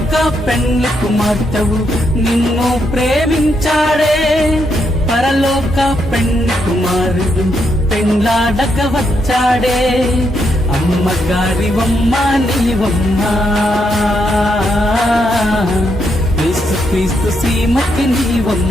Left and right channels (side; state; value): both; normal; correlation 0.79